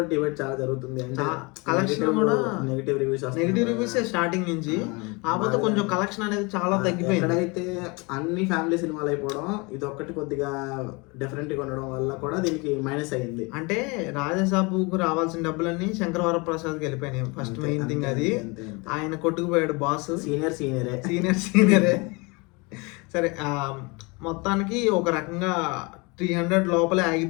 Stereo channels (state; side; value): quieter; right; 28.0 dB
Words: డిబేట్ చాలా జరుగుతుంది. అంటే కలెక్షన్ కూడా నెగిటివ్ రివ్యూస్ స్టార్టింగ్ నుంచి, కాకపోతే కొంచెం కలెక్షన్ అనేది చాలా తగ్గిపోయింది. ఎక్కడైతే అన్ని ఫ్యామిలీ సినిమాలు అయిపోవడం, ఇది ఒక్కటి కొద్దిగా డిఫరెంట్ గా ఉండడం వల్ల కూడా దీనికి మైనస్ అయ్యింది. అంటే రాజాసాబుకు రావాల్సిన డబ్బులన్నీ శంకర్ వరప్రసాద్కి వెళ్ళిపోయినాయి. ఫస్ట్ మెయిన్ థింగ్ అది. ఆయన కొట్టుకుపోయాడు బాస్. సీనియరే. సరే మొత్తానికి ఒక రకంగా 300 లోపలే